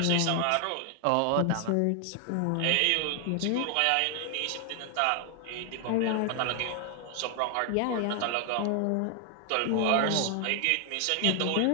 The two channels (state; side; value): different; both; correlation 0.00